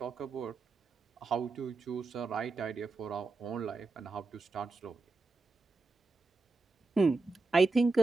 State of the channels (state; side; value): quieter; left; 3.7 dB